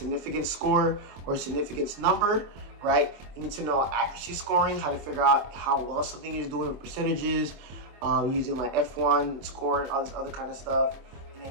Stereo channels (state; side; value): late; left; 24 ms